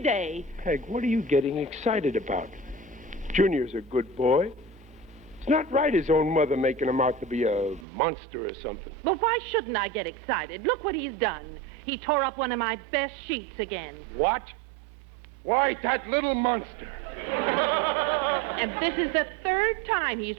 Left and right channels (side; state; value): left; drops out; at 7.9 s